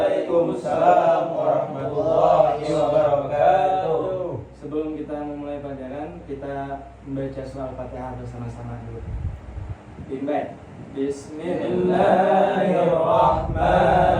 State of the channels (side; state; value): both; identical; correlation 1.00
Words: warahmatullahi wabarakatuh. Sebelum kita memulai pelajaran, kita membaca surah Al-Fatihah bersama-sama dulu. Baik.